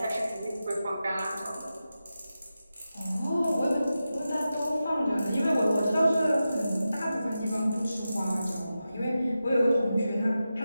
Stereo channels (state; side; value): inverted; both; correlation -0.91